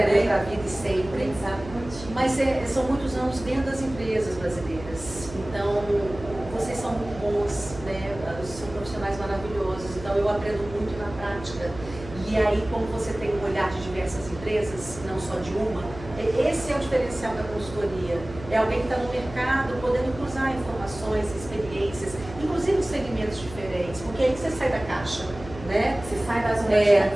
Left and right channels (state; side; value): noise; right; hum, 14 dB below the sound